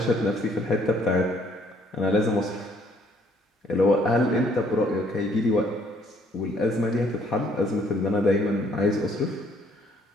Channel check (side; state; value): both; normal; correlation 0.64